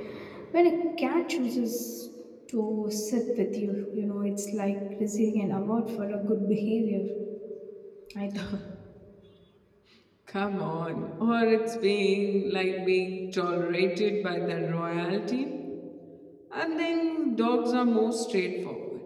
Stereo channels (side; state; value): both; identical; correlation 1.00